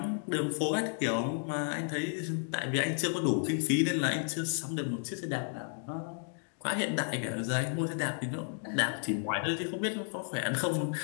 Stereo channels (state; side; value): silent; right; 56 dB below the other